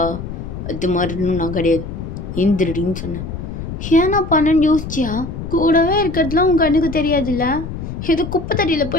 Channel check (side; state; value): left; noise; rumble, 7 dB below the sound